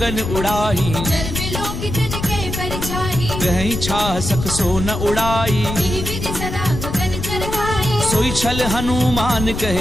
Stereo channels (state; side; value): noise; left; rumble, 5 dB below the sound